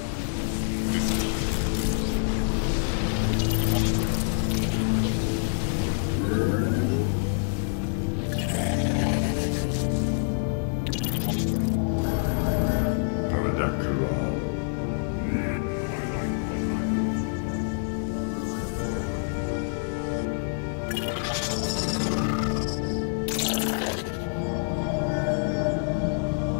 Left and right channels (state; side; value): silent; right; digital silence